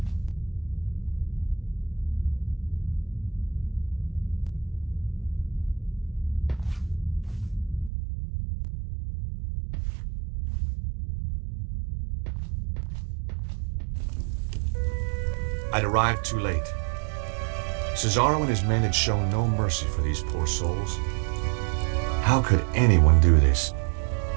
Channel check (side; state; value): left; drops out; at 7.9 s